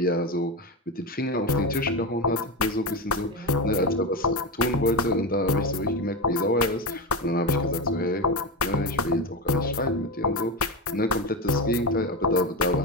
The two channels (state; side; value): normal; both; correlation 0.17